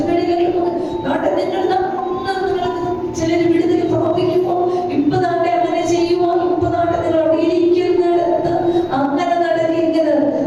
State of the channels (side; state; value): both; identical; correlation 1.00